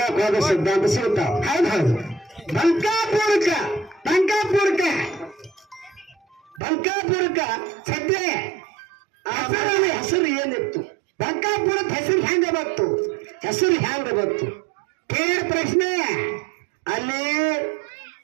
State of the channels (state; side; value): drops out; left; at 6.6 s